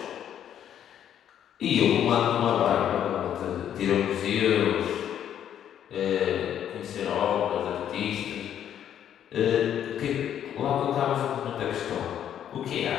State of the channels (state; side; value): quieter; right; 9.9 dB